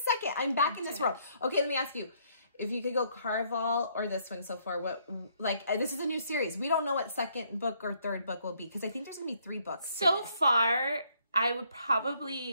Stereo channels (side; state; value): both; inverted; correlation -0.68